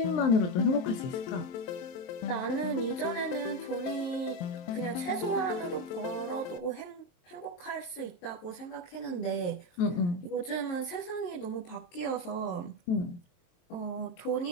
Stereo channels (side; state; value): right; late; 23 ms